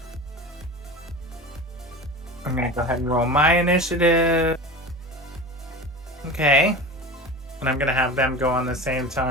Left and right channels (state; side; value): normal; both; correlation 0.31